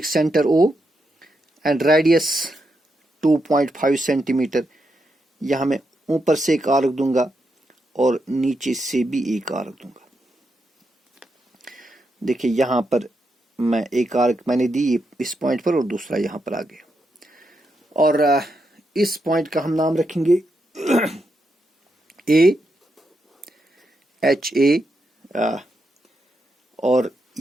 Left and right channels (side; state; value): both; normal; correlation 0.83